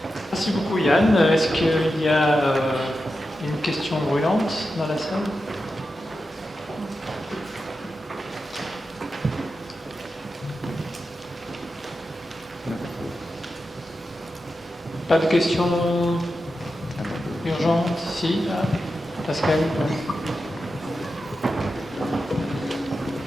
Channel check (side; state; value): both; normal; correlation 0.90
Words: Merci beaucoup Yann. Est-ce qu'il y a une questions brûlantes dans la salle? Pas de questions urgentes? Si, Pascal.